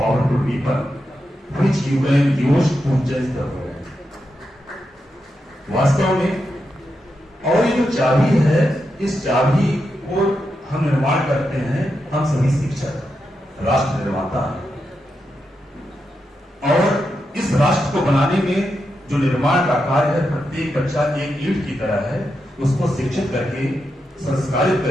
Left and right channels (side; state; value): both; normal; correlation 0.86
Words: weapon which you can use to change the world. वास्तव में और ये जो चाबी है, इस चाबी को हम निर्माण करते हैं, हम सभी शिक्षक, राष्ट्र निर्माता हैं. और इस राष्ट्र को बनाने में जो निर्माण का कार्य है, प्रत्येक बच्चा एक ईंट की तरह है. उसको शिक्षित करके, संस्कारित